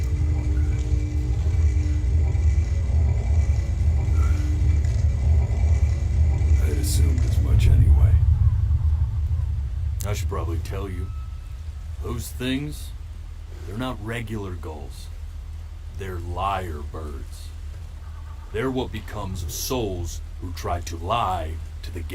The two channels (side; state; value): both; identical; correlation 1.00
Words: I had assumed as much anyway. I should probably tell you, those things, they're not regular gulls. They're lyre birds. They're what becomes of souls who try to lie to the